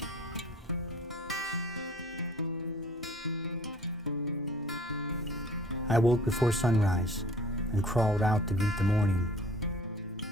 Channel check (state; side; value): normal; both; correlation 0.51